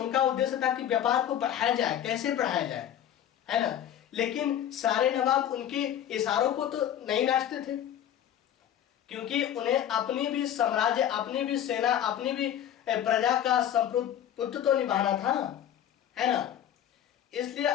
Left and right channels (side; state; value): right; quieter; 10.5 dB